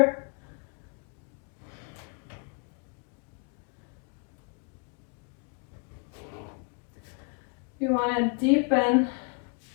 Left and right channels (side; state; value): right; quieter; 37.7 dB